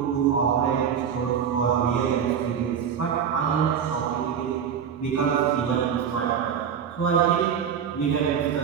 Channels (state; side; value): quieter; left; 7.8 dB